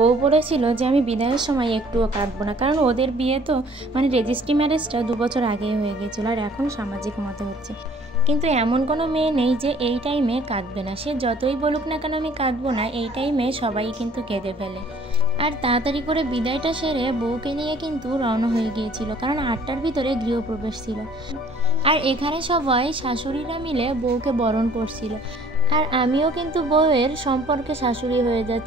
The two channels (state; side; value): normal; both; correlation 0.55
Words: বলেছিল যে আমি বিদায়ের সময় একটুও কাঁদবো না, কারণ ওদের বিয়ে তো মানে রেজিস্ট্রি ম্যারেজটা 2 বছর আগেই হয়ে গিয়েছিল, আর এখন সামাজিক মতে হচ্ছে। কিন্তু এমন কোনো মেয়ে নেই যে এই টাইমে কাঁদবে না, সে যতই বলুক না কেন আমি কাঁদবো না, এই টাইমে সবাই কিন্তু কেঁদে ফেলে। আর তাড়াতাড়ি করে বিদায়টা সেরে বউকে নিয়ে কিন্তু রওনা হয়ে গিয়েছিল, কারণ 8টার ভিতরে গৃহপ্রবেশ ছিল। আর এখানে সবাই শাশুড়িরা মিলে বউকে বরণ করছিল। আর আমিও কিন্তু বউয়ের সম্পর্কে শাশুড়ি হয়ে